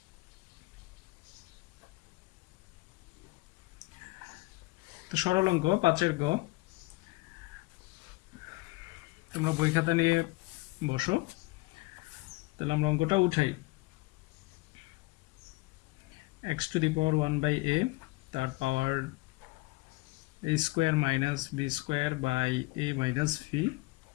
তো সরল অঙ্ক 5-এর গ, তোমরা বই খাতা নিয়ে বসো। তাহলে আমরা অঙ্কটা উঠাই। x to the power 1 by a, তার power a square minus b square by a minus v,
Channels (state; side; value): quieter; right; 23.1 dB